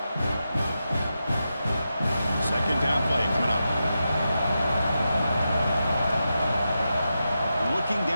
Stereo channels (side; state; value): both; inverted; correlation -0.89